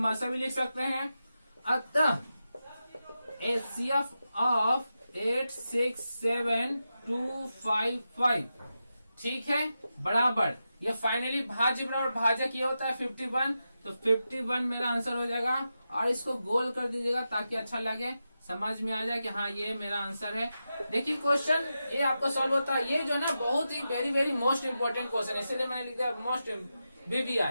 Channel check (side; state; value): both; inverted; correlation -0.90